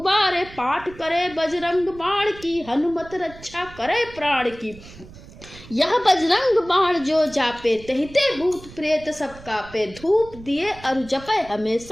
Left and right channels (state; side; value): noise; right; rumble, 18 dB below the sound